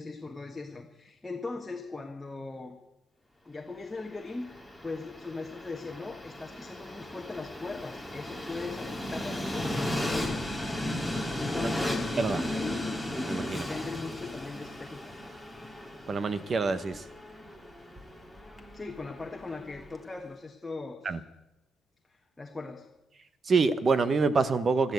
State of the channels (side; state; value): both; normal; correlation 0.85